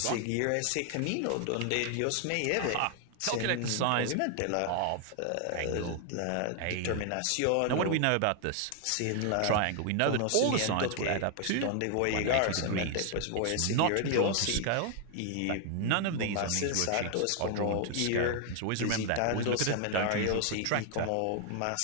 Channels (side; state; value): both; different; correlation 0.00